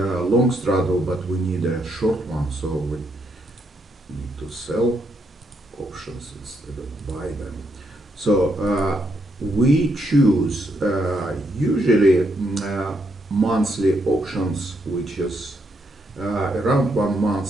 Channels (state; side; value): normal; both; correlation 0.77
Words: straddle, but we need a short one, so we need to sell options instead of buy them. So we choose usually monthly options, which is around 1